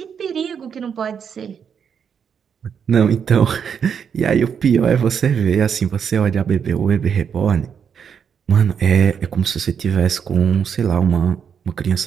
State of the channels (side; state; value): left; quieter; 7.3 dB